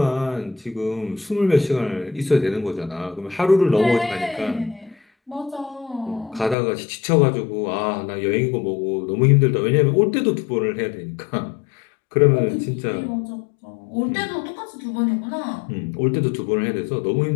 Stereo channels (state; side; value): drops out; right; at 6.6 s